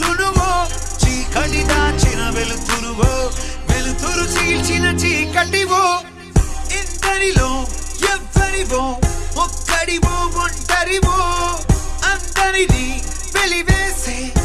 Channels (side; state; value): both; identical; correlation 1.00